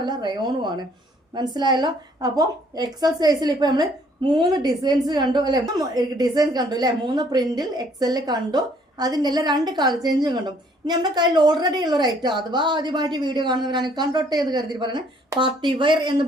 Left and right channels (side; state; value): both; normal; correlation 0.62